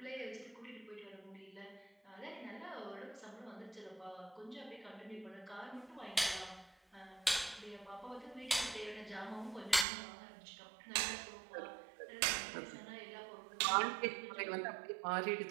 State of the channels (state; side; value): drops out; left; at 9.9 s